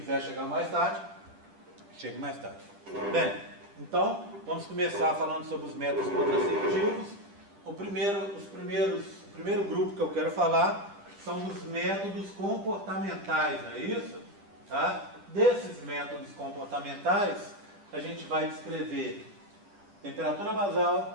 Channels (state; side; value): late; left; 9.8 ms